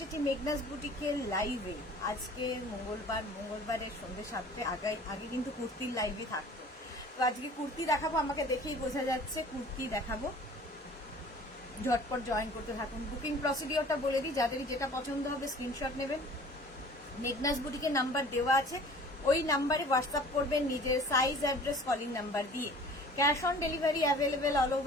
মেঘনাস বুটিকের লাইভে। আজকে মঙ্গলবারের সন্ধ্যে 7টে আগে কিন্তু কুর্তির লাইভে থাকতো। তো আজকে কুর্তি দেখাবো, আমাকে দেখেই বোঝা যাচ্ছে কুর্তি দেখাবো। ঝটপট জয়েন করতে থাকুন। বুকিং প্রসিডিওরটা বলে দিই, যাদেরই যেটা পছন্দ হবে স্ক্রিনশট নেবেন। মেঘনাস বুটিকের নাম্বার দেওয়া আছে, ওই নাম্বারে হোয়াটসঅ্যাপ করবেন নিজের সাইজ, অ্যাড্রেস, কলিং নাম্বার দিয়ে। Cash on delivery available all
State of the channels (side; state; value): both; normal; correlation 0.47